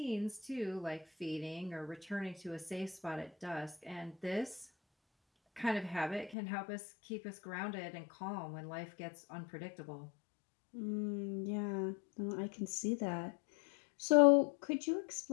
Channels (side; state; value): right; drops out; at 6.4 s